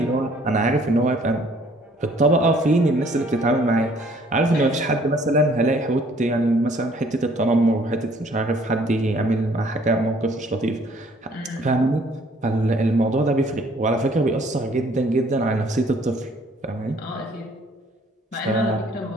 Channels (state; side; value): normal; both; correlation 0.60